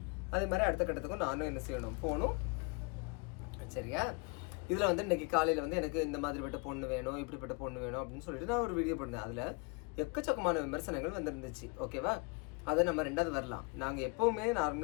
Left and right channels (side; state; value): right; quieter; 30.2 dB